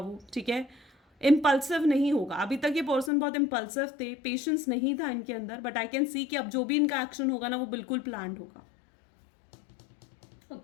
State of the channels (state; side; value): drops out; right; at 3.1 s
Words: ठीक है। इम्पल्सिव नहीं होगा। अभी तक ये पर्सन बहुत इम्पल्सिव थे, पेशेंस नहीं था इनके अंदर, बट आई कैन सी कि अब जो भी इनका एक्शन होगा ना वो बिल्कुल प्लान्ड होगा,